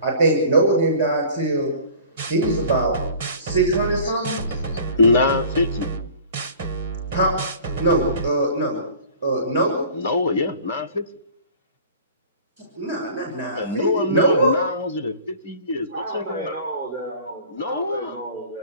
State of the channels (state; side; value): inverted; both; correlation -0.45